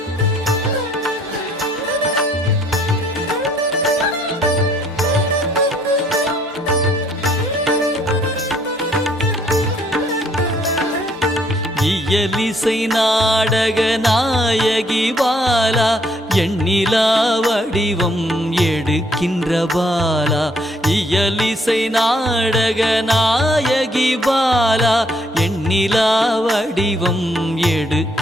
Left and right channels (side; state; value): both; normal; correlation 0.66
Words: இயலிசை நாடக நாயகி பாலா எண்ணிலா வடிவம் எடுக்கின்ற பாலா இயலிசை நாடக நாயகி பாலா எண்ணிலா வடிவம்